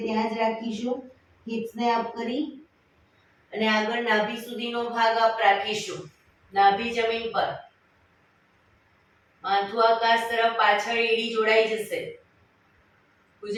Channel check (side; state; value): both; identical; correlation 1.00